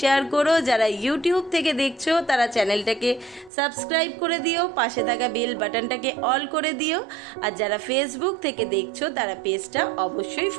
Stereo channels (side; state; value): left; drops out; at 3.5 s